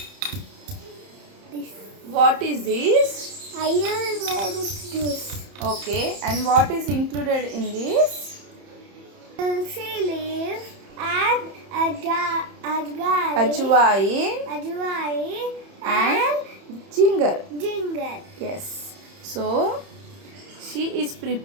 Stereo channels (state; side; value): late; left; 31 ms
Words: this What is this? Ayurvedic juice. Okay, and what is included in this? Tulsi leaf and Ajwain and ginger. ginger. Yes. So she is